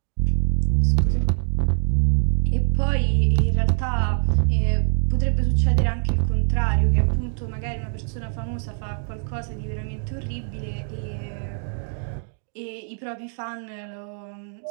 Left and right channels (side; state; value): left; silent; 57 dB below the other